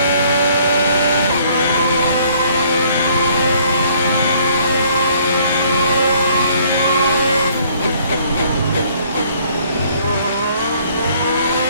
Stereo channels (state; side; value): inverted; both; correlation -0.62